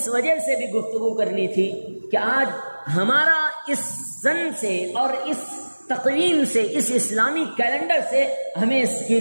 وجہ سے بھی گفتگو کرنی تھی کہ آج ہمارا اس سن سے اور اس تقویم سے، اس اسلامی کیلنڈر سے ہمیں اس کی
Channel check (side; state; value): both; inverted; correlation -1.00